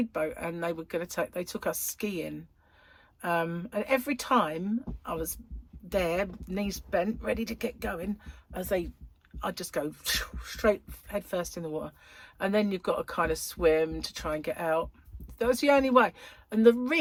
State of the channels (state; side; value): identical; both; correlation 1.00